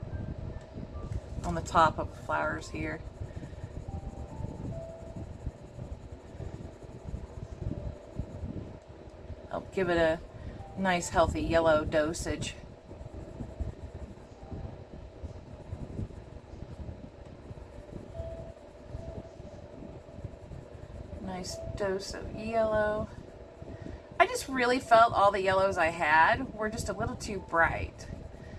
on the top of the flowers here. I'll give it a nice healthy yellow dosage. Nice dose of yellow. I just really felt all the yellows I had were just a little too bright.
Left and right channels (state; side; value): identical; both; correlation 1.00